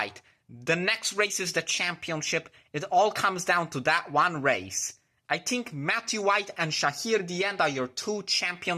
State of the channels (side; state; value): both; identical; correlation 1.00